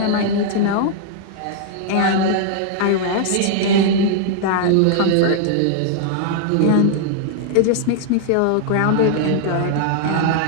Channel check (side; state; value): both; different; correlation -0.01